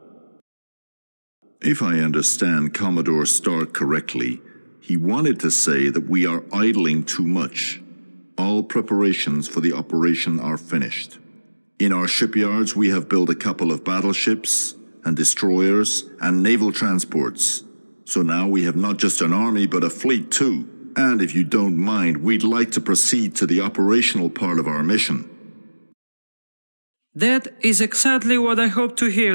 If I understand Commodore Stark correctly, he wanted to say that we are idling too much. All preparations for the operation are finished. In our shipyards, we have built a couple of battleships and destroyers and naval transports. So now we have not just an army, but a fleet too. And if you don't mind, we'd like to proceed to the operational part of our mission. That is exactly what I hope to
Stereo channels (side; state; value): both; inverted; correlation -1.00